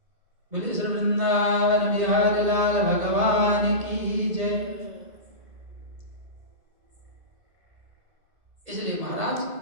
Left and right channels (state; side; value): late; left; 1.8 ms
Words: बोले श्री वृंदावन बिहारी लाल भगवान की जय। इसलिए महाराज